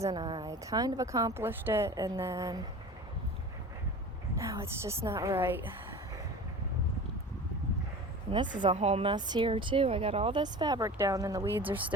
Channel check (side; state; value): both; normal; correlation 0.36